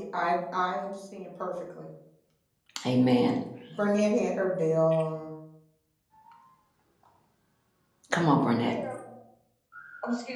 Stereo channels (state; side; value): identical; both; correlation 1.00